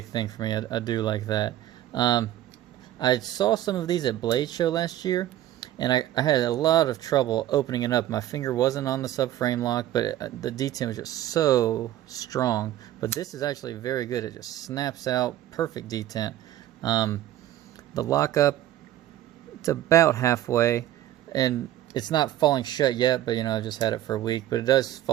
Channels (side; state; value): left; quieter; 13.1 dB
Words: thing for me. I do like that. I saw some of these at Blade Show last year, and I had a lot of trouble opening it up. My finger wasn't on the subframe lock, but the detent was just so strong. But this is actually very good. It just snaps out, perfect detent. The lockup, it's about halfway, and it's not falling shut yet, but you know, I've just had it for a week, but it does